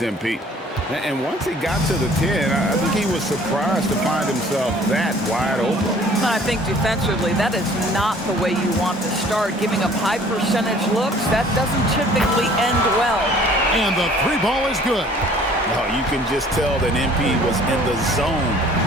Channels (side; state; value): both; normal; correlation 0.53